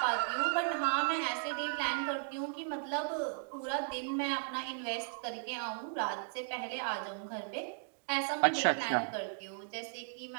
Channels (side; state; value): left; silent; digital silence